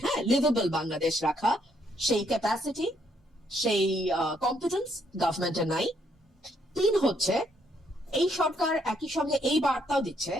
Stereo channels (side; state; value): both; normal; correlation 0.71